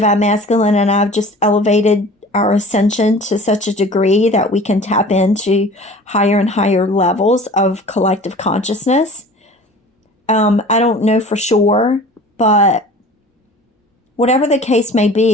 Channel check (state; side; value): normal; both; correlation 0.43